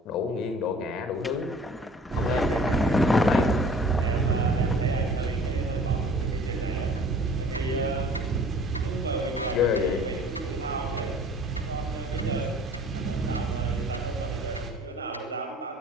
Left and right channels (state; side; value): normal; both; correlation 0.49